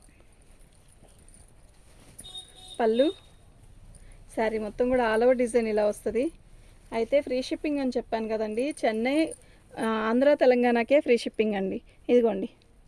పళ్ళు శారీ మొత్తం కూడా ఆల్ ఓవర్ డిజైన్ ఇలా వస్తుంది. అయితే ఫ్రీ షిప్పింగ్ అని చెప్పాను కదండి. చెన్నై, ఆంధ్ర, తెలంగాణకే ఫ్రీ షిప్పింగ్ అండి. ఇదిగోండి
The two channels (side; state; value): both; identical; correlation 1.00